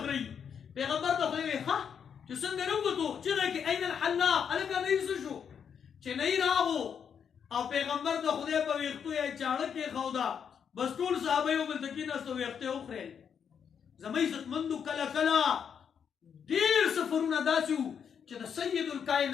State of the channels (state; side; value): quieter; right; 7.5 dB